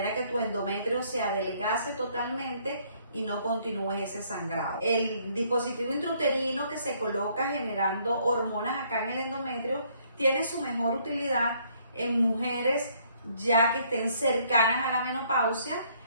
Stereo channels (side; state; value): both; inverted; correlation -0.66